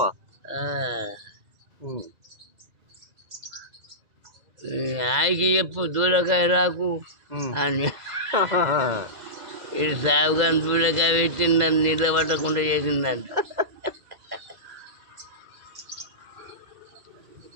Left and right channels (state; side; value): late; left; 2.0 ms